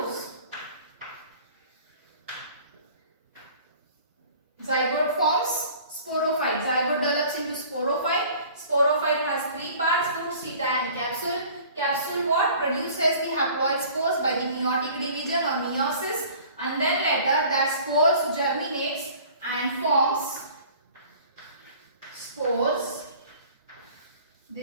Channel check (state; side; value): inverted; both; correlation -0.48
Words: Zygote forms sporophyte. Zygote develops into sporophyte. Sporophyte has three parts: foot, seta and capsule. Capsule what? Produces the haploid spores by the meiotic division or meiosis, and then later that spores germinates and forms spores.